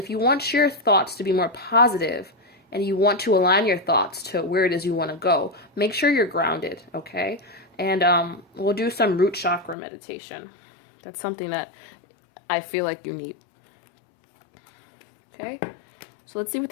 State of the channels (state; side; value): drops out; right; at 9.8 s